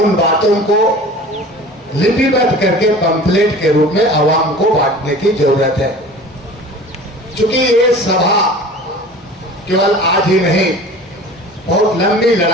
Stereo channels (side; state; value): both; normal; correlation 0.41